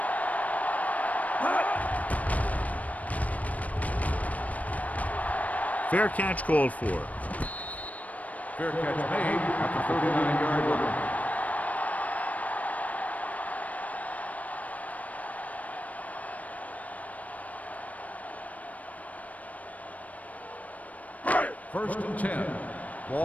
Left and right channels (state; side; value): late; right; 0.071 ms